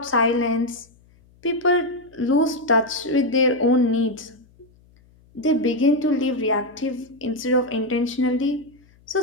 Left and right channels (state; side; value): noise; left; hum, 30 dB below the sound